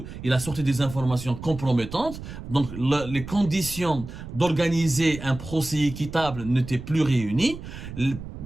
il a sorti des informations compromettantes, donc les conditions d'organiser un procès équitable n'étaient plus réunies,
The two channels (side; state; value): right; noise; rumble, 11 dB below the sound